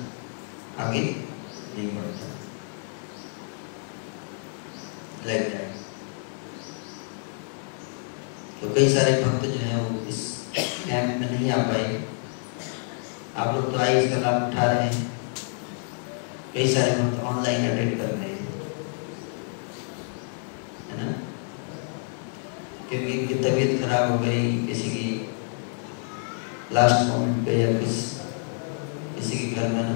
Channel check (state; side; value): silent; right; 60 dB below the other